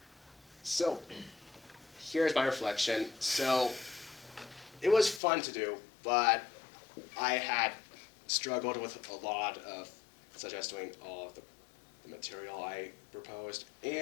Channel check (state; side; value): drops out; right; at 5.2 s